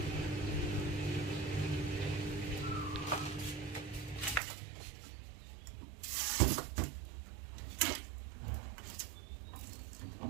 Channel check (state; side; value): drops out; left; at 4.4 s